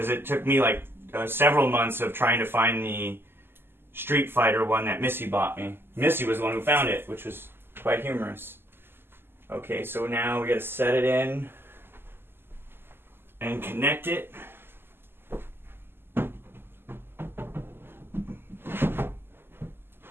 it took me like several months of trying to find the Street Fighter one that Missy bought me. Missy was the one who found it, which was quite humorous. Okay, so now we gotta set it in and connect it.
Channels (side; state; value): left; late; 0.11 ms